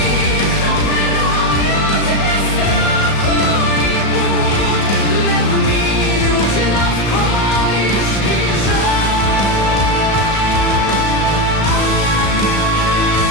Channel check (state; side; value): late; right; 35 ms